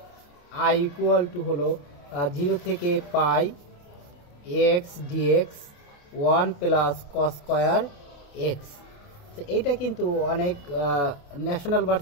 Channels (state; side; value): late; right; 28 ms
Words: আই ইকুয়াল টু হলো 0 থেকে pi x dx 1 plus cos square x. তো এইটা কিন্তু অনেক ন্যাশনাল